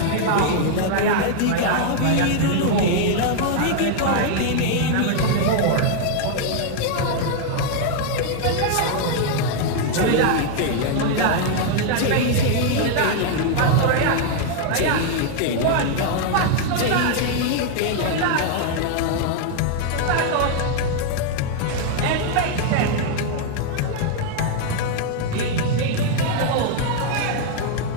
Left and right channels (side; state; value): both; different; correlation 0.00